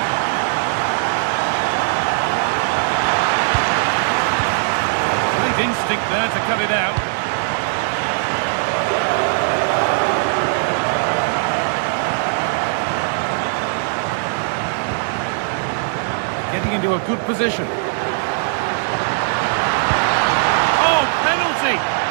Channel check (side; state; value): left; silent; 66 dB below the other